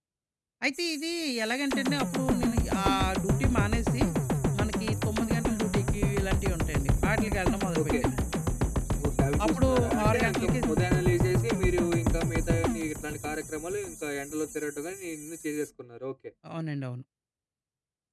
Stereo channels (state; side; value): identical; both; correlation 1.00